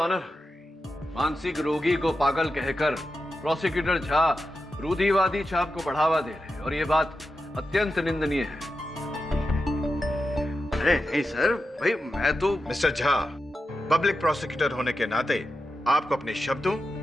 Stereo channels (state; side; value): normal; both; correlation 0.89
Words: मानसिक रोगी को पागल कहकर प्रोसिक्यूटर झा रूढ़िवादी छाप को बढ़ावा दे रहे हैं और ये बात अत्यंत निंदनीय है। अरे नहीं सर, भाई मैं तो। मिस्टर झा, पब्लिक प्रोसिक्यूटर होने के नाते आपको अपने शब्दों